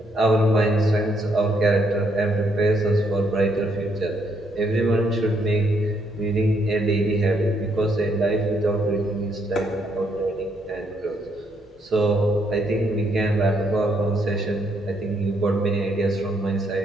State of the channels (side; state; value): both; normal; correlation 0.73